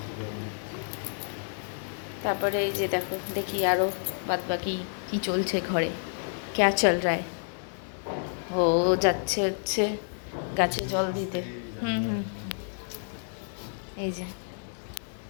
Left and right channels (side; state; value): right; silent; 58 dB below the other